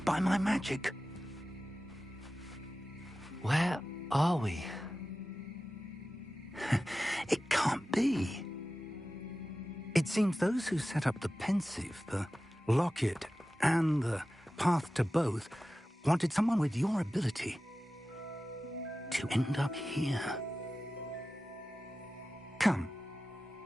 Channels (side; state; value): both; normal; correlation 0.95